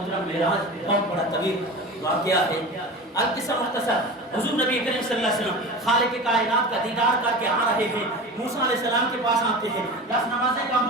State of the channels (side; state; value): both; normal; correlation 0.31